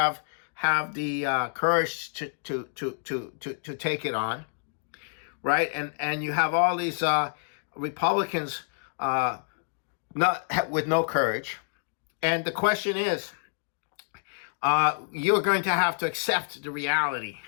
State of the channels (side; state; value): right; silent; digital silence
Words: the courage to take it on, right? And you have all these Republicans not with no courage. And the question is, you're going to have to accept the reality